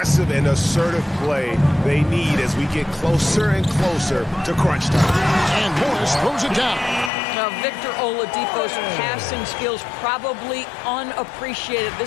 and assertive play they need as we get closer and closer to crunch time. And Morris throws it down. Now, Victor Oladipo's passing skills probably unappreciated.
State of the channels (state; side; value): drops out; right; at 7.1 s